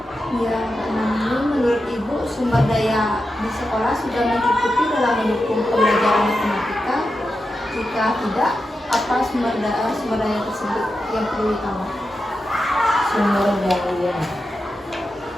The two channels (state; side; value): normal; both; correlation 0.89